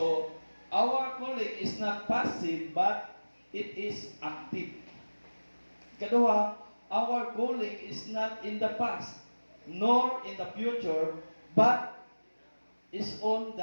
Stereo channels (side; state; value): both; inverted; correlation -1.00